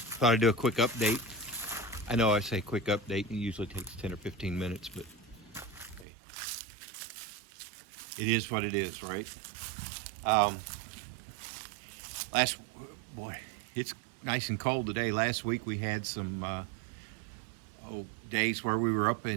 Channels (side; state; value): left; drops out; at 6.1 s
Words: I'd do a quick update. I know I say quick update, it usually takes 10 or 15 minutes, but hey, it is what it is, right? Boy, it's nice and cold today. Last week we had some days where we were up